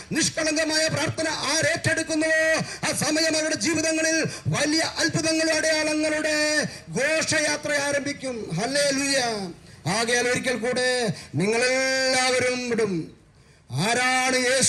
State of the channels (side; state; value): both; identical; correlation 1.00